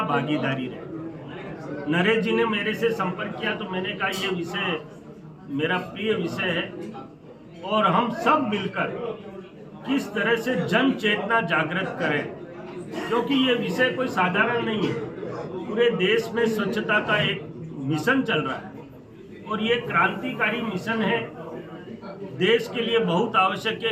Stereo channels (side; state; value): both; identical; correlation 1.00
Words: भागीदारी रहे। नरेश जी ने मेरे से संपर्क किया तो मैंने कहा ये विषय मेरा प्रिय विषय है और हम सब मिलकर किस तरह से जन चेतना जागृत करें, क्योंकि ये विषय कोई साधारण नहीं है। पूरे देश में स्वच्छता का एक मिशन चल रहा है और ये क्रांतिकारी मिशन है, देश के लिए बहुत आवश्यक